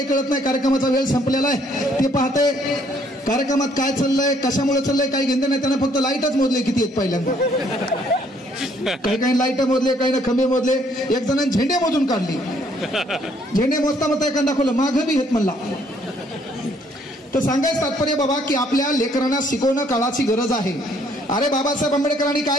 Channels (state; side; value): normal; both; correlation 0.65